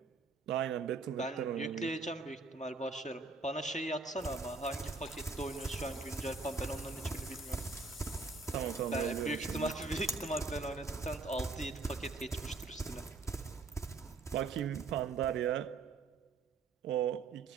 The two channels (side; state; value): left; quieter; 4.0 dB